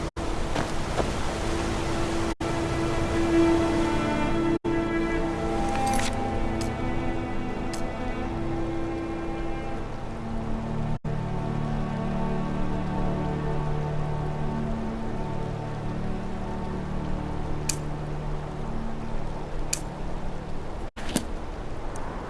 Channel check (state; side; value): identical; both; correlation 1.00